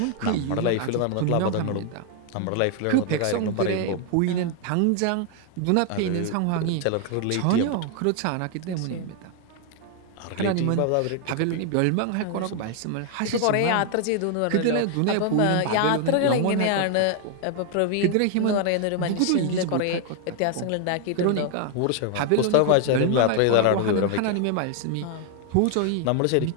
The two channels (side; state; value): both; different; correlation 0.00